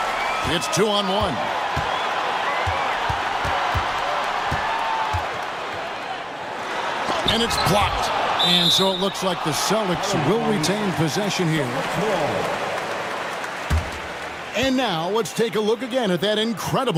It's 2-on-1. And it's blocked. And so it looks like the Celtics will retain possession here. And now let's take a look again at that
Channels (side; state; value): both; identical; correlation 1.00